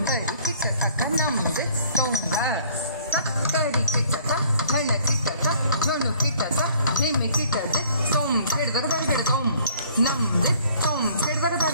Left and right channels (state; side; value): inverted; both; correlation -0.57